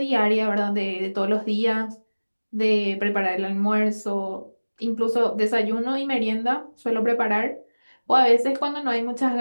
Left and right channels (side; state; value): both; inverted; correlation -1.00